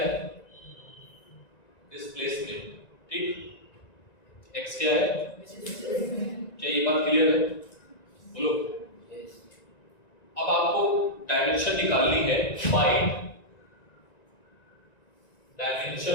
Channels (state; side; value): late; right; 1.9 ms